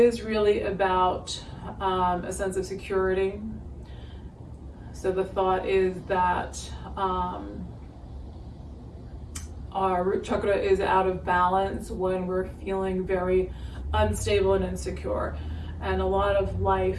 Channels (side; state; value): both; identical; correlation 1.00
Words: really about a sense of security. So the thought is that our root chakra is out of balance when we're feeling very unstable and insecure. And a lot of